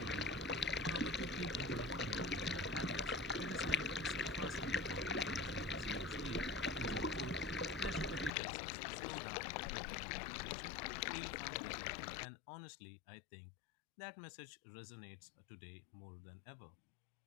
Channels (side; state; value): right; drops out; at 8.3 s